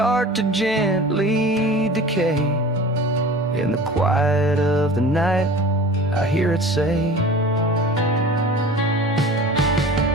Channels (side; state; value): both; normal; correlation 0.39